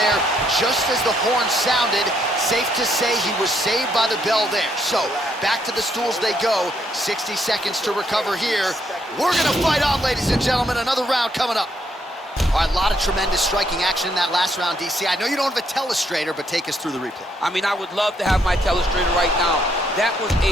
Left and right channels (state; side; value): normal; both; correlation 0.73